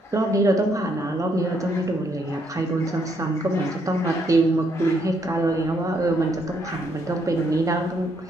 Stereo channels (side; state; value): both; normal; correlation 0.73